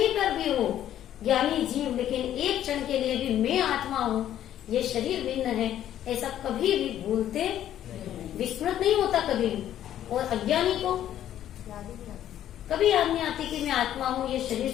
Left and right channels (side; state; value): right; quieter; 11.5 dB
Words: पर भी हो, ज्ञानी जीव लेकिन एक क्षण के लिए भी मैं आत्मा हूँ, ये शरीर भिन्न है, ऐसा कभी भी भूलते, विस्मृत नहीं होता कभी भी। और अज्ञानी को कभी याद नहीं आती कि मैं आत्मा हूँ, ये शरीर